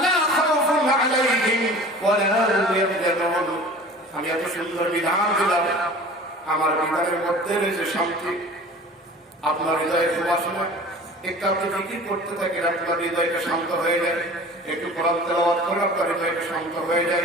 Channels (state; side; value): normal; both; correlation 0.42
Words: খাউফুন আলাইহিম ওয়ালা হুম ইয়াহজানুন আমি এত সুন্দর বিধান দিলাম আমার বিধানের মধ্যে রয়েছে শান্তি আপনার হৃদয়ের সুবাসনা একটু আপনি জিকির করতে থাকেন আপনার হৃদয়টা শান্ত হয়ে যায় একটু কোরআন তেলাওয়াত করে আপনার হৃদয়টা শান্ত হয়ে